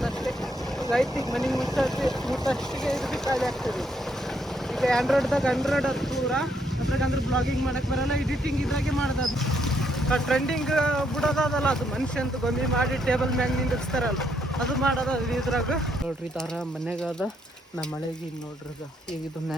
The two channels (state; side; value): normal; both; correlation 0.74